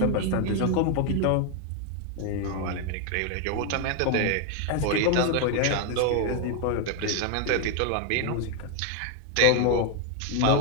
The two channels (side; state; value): both; different; correlation 0.01